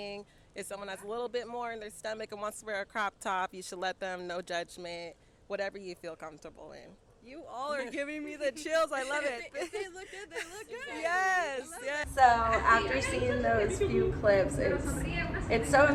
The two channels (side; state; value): both; identical; correlation 1.00